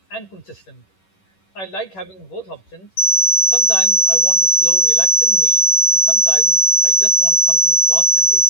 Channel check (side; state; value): right; late; 11 ms